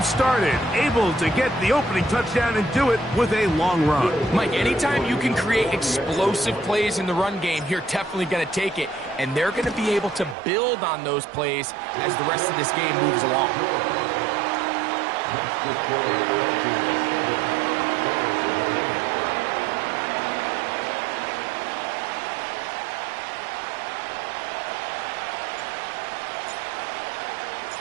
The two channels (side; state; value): left; drops out; at 10.4 s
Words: started. Able to get the opening touchdown and do it with a long run. Mike, anytime you can create explosive plays in the run game, you're definitely going to take it. And they're going to be able to build on those plays as the rest of this game moves along.